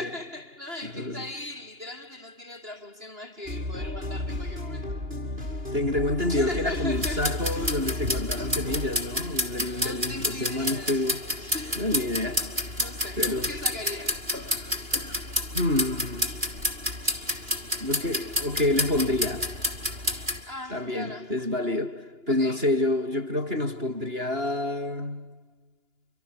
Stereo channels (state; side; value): late; left; 2.9 ms